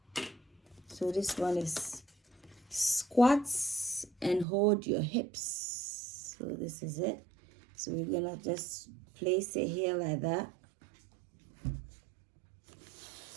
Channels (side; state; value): left; drops out; at 4.5 s